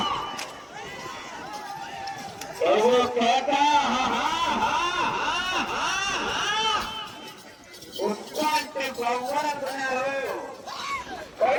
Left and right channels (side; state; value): both; identical; correlation 1.00